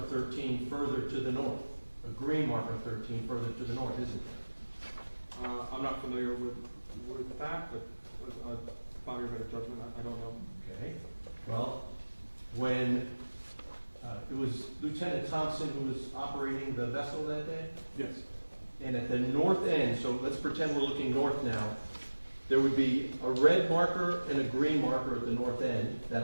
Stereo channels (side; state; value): both; inverted; correlation -1.00